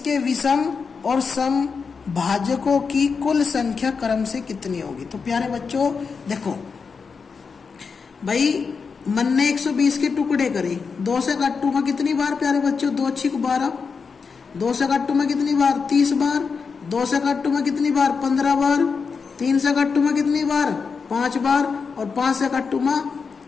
विषम और सम भाजकों की कुल संख्या क्रम से कितनी होगी। तो प्यारे बच्चों देखो भाई, मन ने 120 के टुकड़े करे, 2 से कट्टू में कितनी बार प्यारे बच्चों 2 6 12, 2 से कट्टू में कितनी बार 30 बार, 2 से कट्टू में कितनी बार 15 बार, 3 से कट्टू में कितनी बार 5 बार और 5 से कट्टू में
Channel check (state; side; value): quieter; right; 5.3 dB